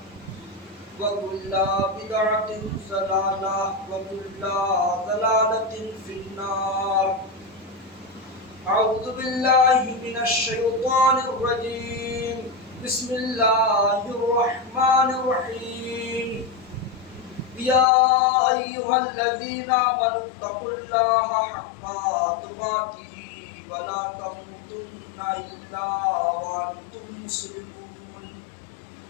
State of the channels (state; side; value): drops out; right; at 17.9 s